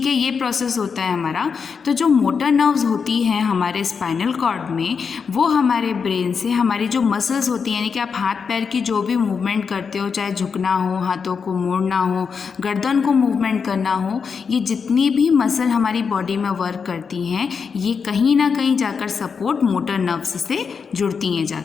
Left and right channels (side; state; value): right; quieter; 5.9 dB